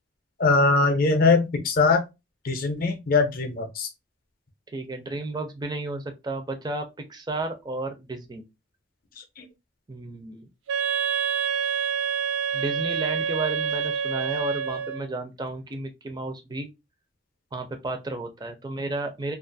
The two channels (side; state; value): both; normal; correlation 0.08